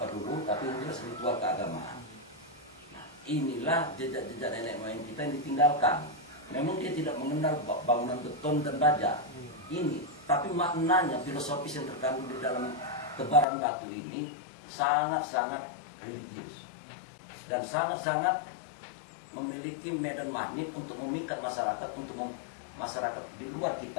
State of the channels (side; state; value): right; drops out; at 13.5 s